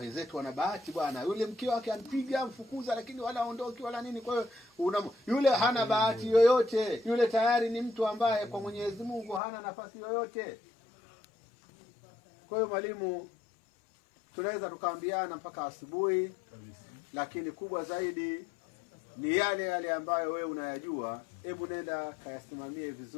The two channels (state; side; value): drops out; right; at 9.4 s